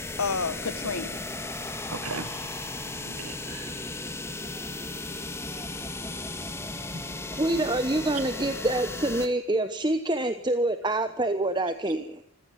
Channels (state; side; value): normal; both; correlation 0.42